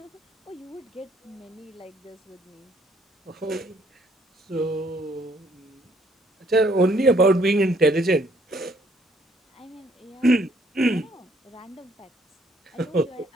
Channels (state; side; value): normal; both; correlation 0.65